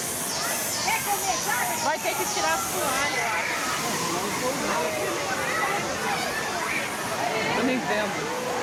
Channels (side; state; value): both; identical; correlation 1.00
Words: Vai ter que tirar as toalhas, eu acho. Eu nem vendo.